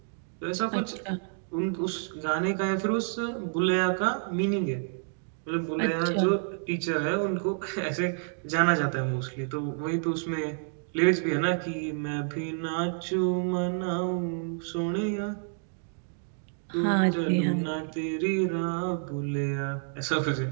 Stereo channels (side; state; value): left; silent; 59 dB below the other